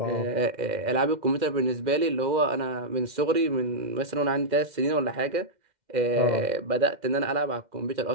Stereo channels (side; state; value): left; late; 2.1 ms